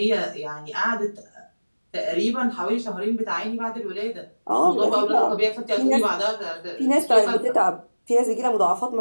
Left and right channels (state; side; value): inverted; both; correlation -1.00